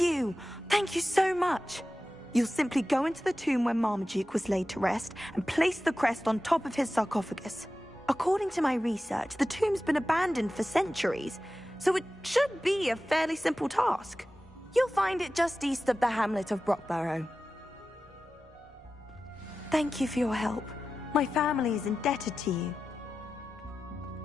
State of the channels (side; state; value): both; normal; correlation 0.93